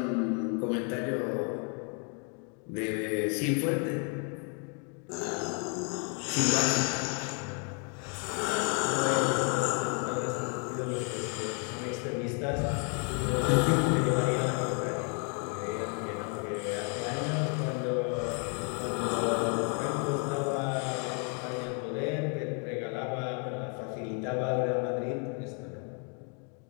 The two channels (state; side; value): quieter; right; 38.8 dB